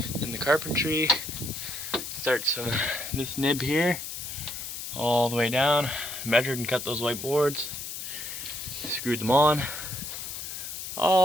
and the carpentry starts from this nib here all the way down. Measured and cut those white boards, screwed them on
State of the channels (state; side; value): noise; left; hiss, 7 dB below the sound